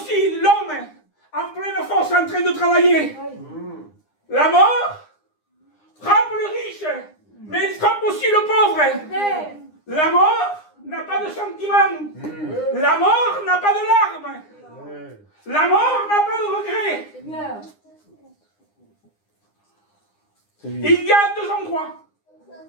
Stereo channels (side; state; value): right; late; 9.8 ms